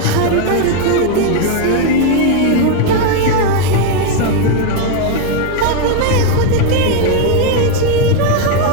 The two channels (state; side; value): different; both; correlation 0.01